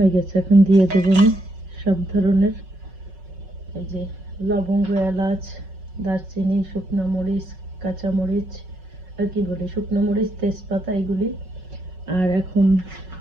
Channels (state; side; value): late; left; 5.4 ms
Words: গেছে, এখন দিয়ে দেবো আমি সব ধরনের, এই যে লবঙ্গ, এলাচ, দারচিনি, শুকনো মরিচ, কাঁচা মরিচ, আর কি বলে শুকনো মরিচ, তেজপাতা, এগুলি। আর এখন